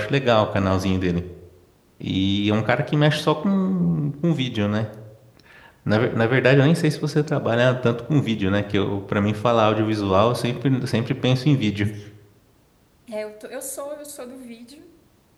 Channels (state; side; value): identical; both; correlation 1.00